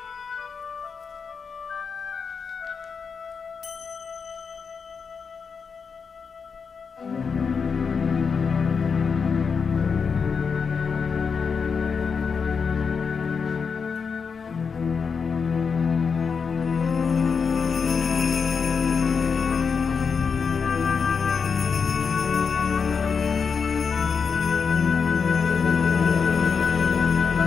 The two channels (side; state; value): right; quieter; 5.7 dB